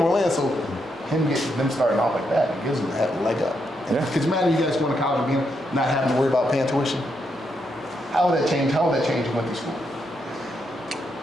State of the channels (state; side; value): normal; both; correlation 0.80